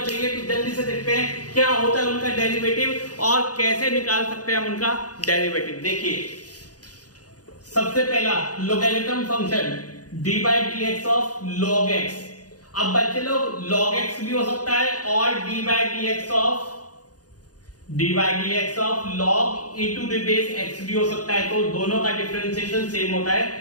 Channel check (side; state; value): right; late; 0.68 ms